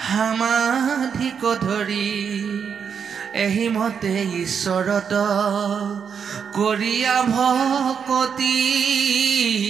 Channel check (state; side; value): quieter; left; 6.9 dB